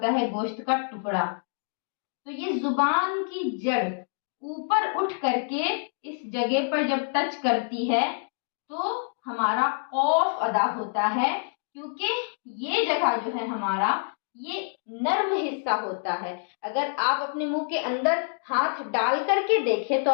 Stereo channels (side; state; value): right; silent; digital silence